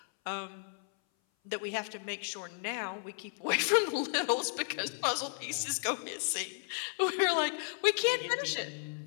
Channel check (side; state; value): right; silent; 55 dB below the other